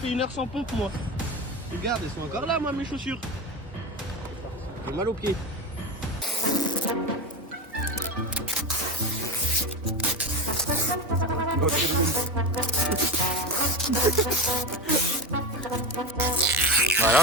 fais 1 heure sans pompe moi. Regarde, elles sont encore là moi mes chaussures. J'ai mal aux pieds. Voilà,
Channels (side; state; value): both; normal; correlation 0.22